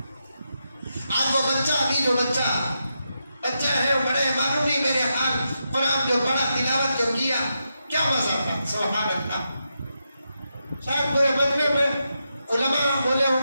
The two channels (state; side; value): inverted; both; correlation -0.86